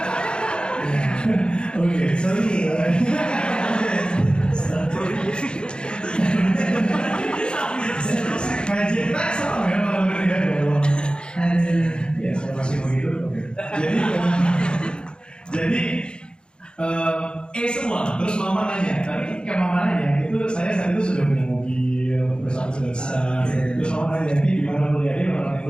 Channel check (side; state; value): right; late; 0.051 ms